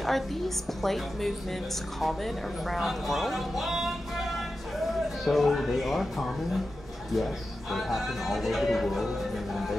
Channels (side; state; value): both; normal; correlation 0.91